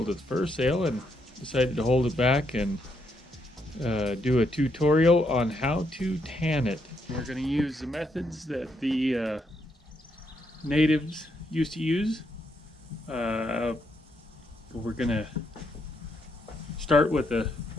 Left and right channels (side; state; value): both; normal; correlation 0.77